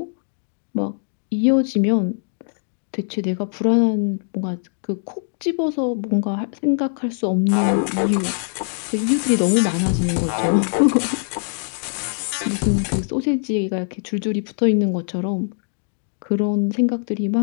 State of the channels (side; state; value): right; silent; digital silence